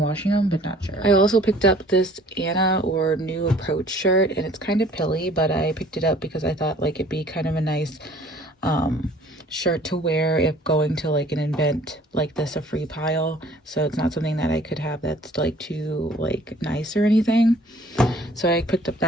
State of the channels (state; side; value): normal; both; correlation 0.54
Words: them, but not sure. I also picked up this Anna or New Approach shirt, and it's kind of pilly, but I picked it up because I thought like it'd be kind of a nice shirt to wear if going to like an event like this, a free pile. So it's not something that I could have that's like too like nice or anything. So I picked up